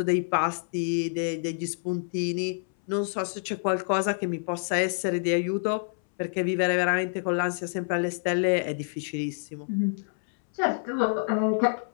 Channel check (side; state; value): right; silent; 60 dB below the other